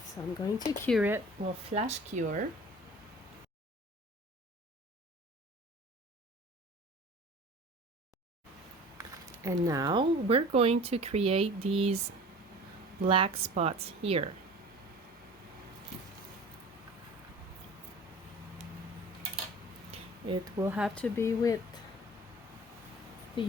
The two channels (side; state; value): both; normal; correlation 0.42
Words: So I'm going to cure it. We'll flash cure. And now we're going to create these black spots here. It will have to be with the